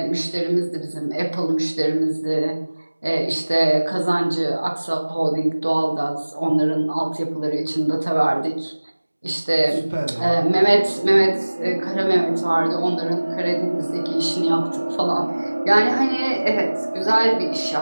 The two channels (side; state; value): both; inverted; correlation -1.00